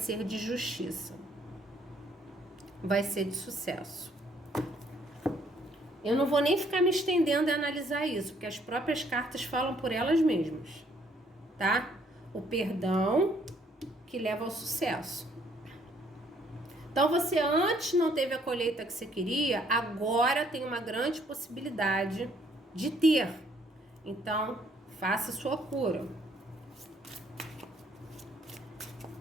de justiça. Vai ser de sucesso. Eu não vou nem ficar me estendendo a analisar isso, porque as próprias cartas falam por elas mesmas, tá? O perdão que leva ao sucesso. Então, você antes não teve a colheita que você queria, agora tem uma grande possibilidade de ter. Então, faça sua cura.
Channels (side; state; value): both; normal; correlation 0.65